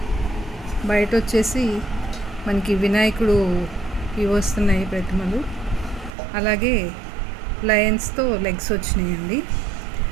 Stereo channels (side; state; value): left; drops out; at 6.2 s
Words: బయట వచ్చేసి మనకి వినాయకుడు ఇవి వస్తున్నాయి ప్రతిమలు, అలాగే లయన్స్తో లెగ్స్ వచ్చినాయండి.